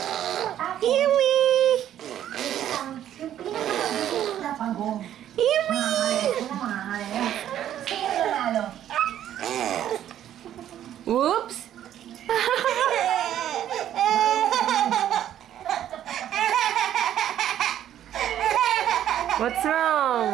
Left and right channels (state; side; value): quieter; left; 11.2 dB